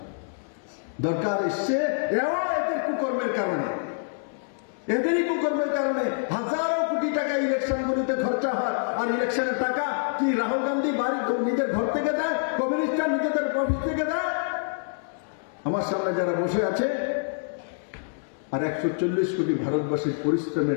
দরকার এসছে এদের কুকর্মের কারণে, এদেরই কুকর্মের কারণে হাজারো কোটি টাকা ইলেকশনগুলিতে খরচা হয়। আর ইলেকশনের টাকা কি রাহুল গান্ধী বাড়ি নিজের ঘর থেকে দেয়, কমিউনিস্টরা নিজেদের অফিস থেকে দেয়? আমার সামনে যারা বসে আছে, আর 140 কোটি ভারতবাসীর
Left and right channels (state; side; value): silent; right; digital silence